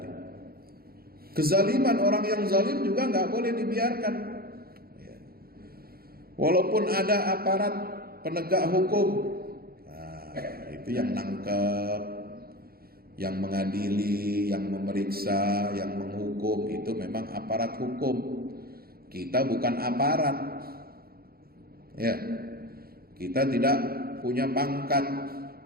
Kezaliman orang yang zalim juga nggak boleh dibiarkan. Walaupun ada aparat penegak hukum, nah, itu yang nangkep, yang mengadili, yang memeriksa, yang menghukum, itu memang aparat hukum. Kita bukan aparat. Ya. Kita tidak punya pangkat.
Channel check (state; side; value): late; left; 0.44 ms